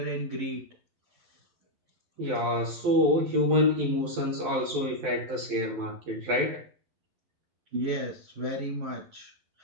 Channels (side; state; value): left; late; 11 ms